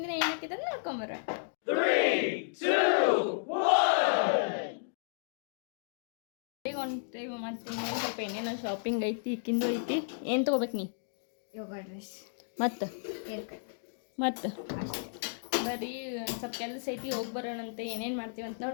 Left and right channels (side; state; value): right; silent; digital silence